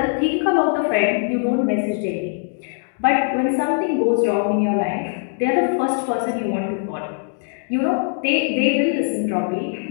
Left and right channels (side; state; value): right; silent; 58 dB below the other